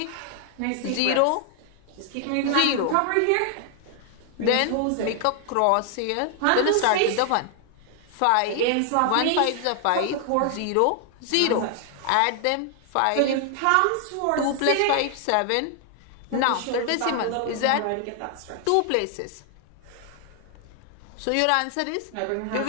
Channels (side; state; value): both; different; correlation 0.00